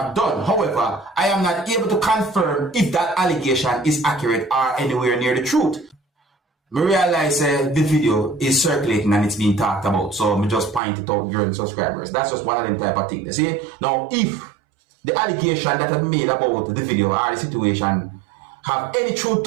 done. However, I am not able to confirm if that allegation is accurate or anywhere near the truth. I realize the video is circulating and it's being talked about, so I just point it out during subscribers. That's just one of them type of things. See? Now, if the allegation that I made about the video or the situation have any truth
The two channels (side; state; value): left; drops out; at 10.8 s